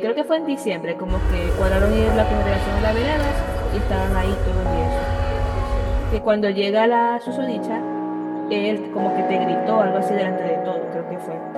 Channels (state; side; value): identical; both; correlation 1.00